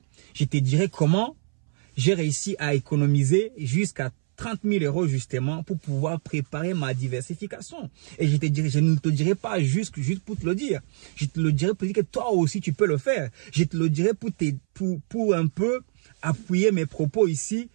Je te dirai comment j'ai réussi à économiser jusqu'à 30 000 € justement pour pouvoir préparer ma diversification. Et je ne te dirai pas juste pour te le dire. Je te le dirai pour dire que toi aussi tu peux le faire. Je te le dirai pour un peu appuyer mes propos ici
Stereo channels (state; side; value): silent; left; 62 dB below the other